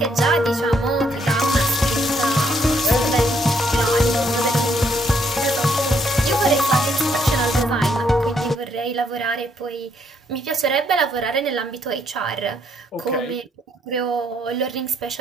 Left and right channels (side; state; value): both; normal; correlation 0.70